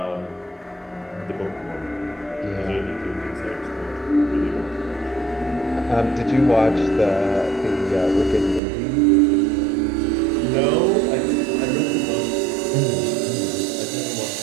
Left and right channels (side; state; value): left; drops out; at 8.6 s